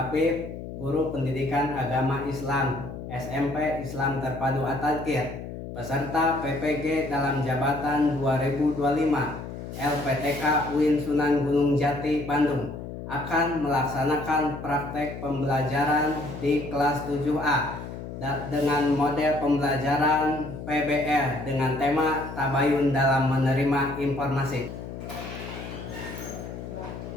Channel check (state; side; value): noise; left; hum, 9 dB below the sound